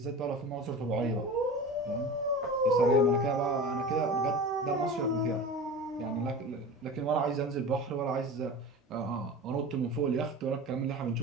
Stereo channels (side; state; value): both; normal; correlation 0.33